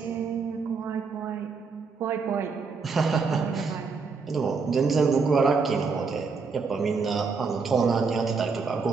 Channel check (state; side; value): quieter; left; 4.9 dB